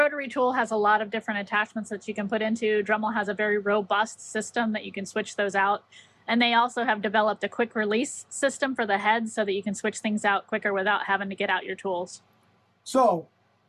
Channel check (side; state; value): both; identical; correlation 1.00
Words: tool has a lot of different attachments that you can put into. Dremel has a very robust system that you can switch those out. And they also have developed a quick release system for the heads so that you can switch things out quicker without having to get out your tools. So,